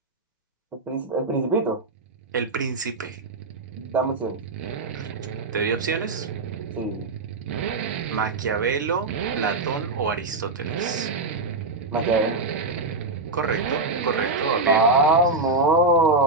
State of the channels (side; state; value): left; quieter; 3.4 dB